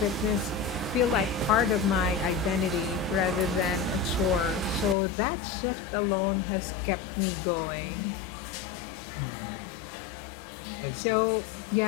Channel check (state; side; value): drops out; right; at 5.0 s